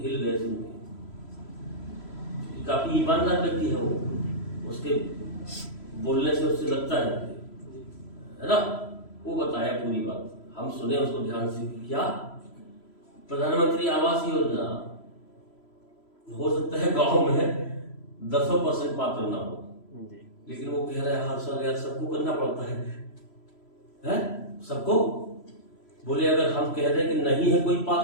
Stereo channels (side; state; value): right; late; 3.0 ms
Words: हिल गए सुन के, काफी ईमानदार व्यक्ति है वो, उसके बोलने से उससे लगता है ना, वो बताया पूरी बात, हम सुने उसको ध्यान से। क्या प्रधानमंत्री आवास योजना हो सकता है गांव में 10% पात्र ना हो, लेकिन वो कह रहा है हर साल यार सबको करना पड़ता है सबको। बोले अगर हम कह रहे हैं कि नहीं है कोई